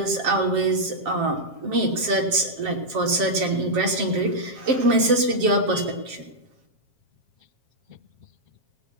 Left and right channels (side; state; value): left; late; 7.4 ms